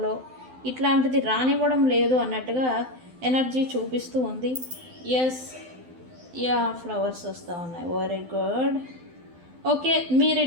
ఇట్లాంటిది రానివ్వడం లేదు అన్నట్టుగా ఎనర్జీ చూపిస్తూ ఉంది. ఫ్లవర్స్ వస్తూ ఉన్నాయి. Very good. ఓకే, మీరు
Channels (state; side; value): late; left; 12 ms